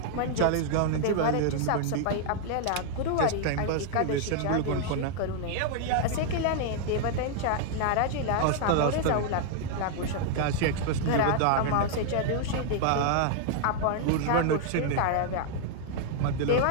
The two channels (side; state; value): both; different; correlation -0.01